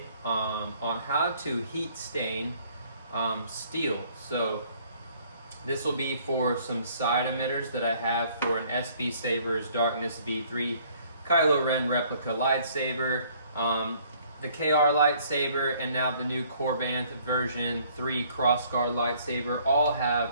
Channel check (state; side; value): inverted; both; correlation -0.60